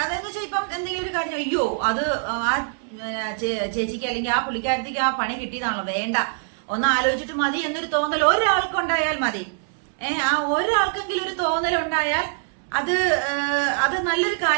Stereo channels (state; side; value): silent; left; 63 dB below the other